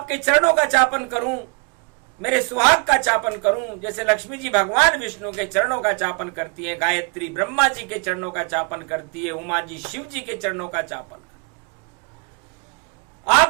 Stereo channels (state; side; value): quieter; left; 33.4 dB